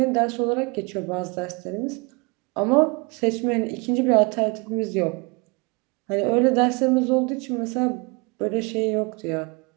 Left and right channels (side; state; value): left; quieter; 29.5 dB